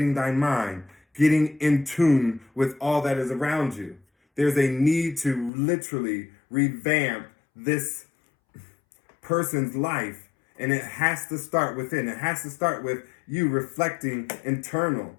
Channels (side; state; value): right; drops out; at 5.5 s